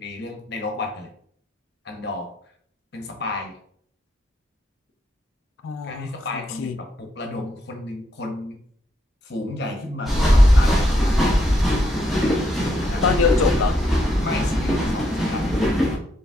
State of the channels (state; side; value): normal; both; correlation 0.77